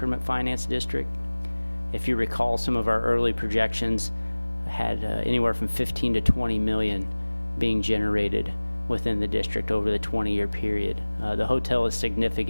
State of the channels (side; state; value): both; inverted; correlation -1.00